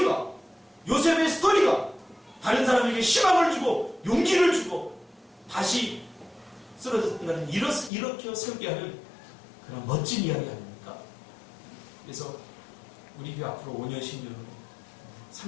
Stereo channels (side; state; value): right; drops out; at 7.9 s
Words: 요셉의 스토리가 다른 사람에게 희망을 주고 용기를 주고 다시 쓰러졌다는 이렇게 설계 하는 그런 멋진 이야기 아닙니까? 그래서 우리 교회 앞으로 5년, 10년 후에